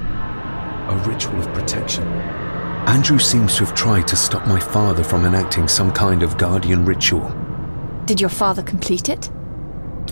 A ritual of protection. Andrew seems to have tried to stop my father from enacting some kind of guardian ritual. Did your father complete it?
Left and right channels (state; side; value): inverted; both; correlation -1.00